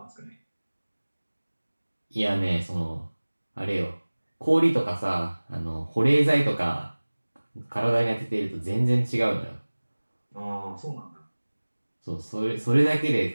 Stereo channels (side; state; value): both; inverted; correlation -1.00